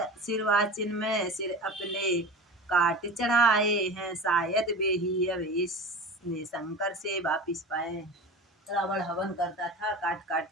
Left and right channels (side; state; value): both; normal; correlation 0.32